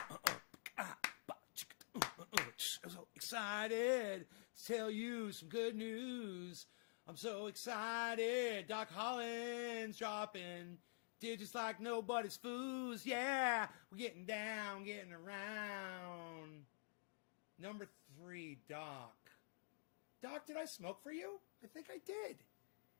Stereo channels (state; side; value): silent; right; digital silence